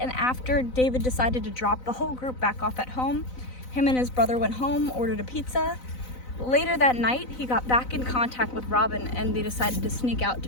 after David decided to drop the whole group back off at home, him and his brother went home, ordered a pizza. Later that night, he got back in contact with Robin and they decided to sneak out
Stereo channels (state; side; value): late; right; 4.0 ms